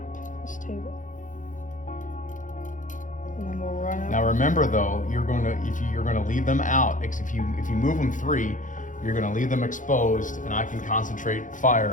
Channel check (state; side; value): late; right; 0.37 ms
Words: this table. And then we'll run up. now remember though, you're going to leave them out. Because if you move them 3, you're going to leave them exposed, and I can concentrate